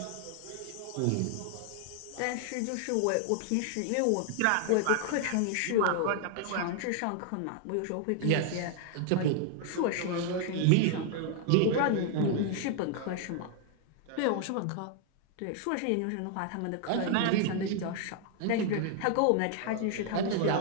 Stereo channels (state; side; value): different; both; correlation 0.00